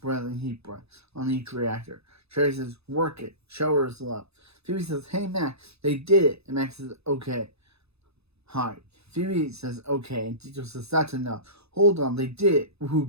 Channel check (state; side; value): late; left; 0.79 ms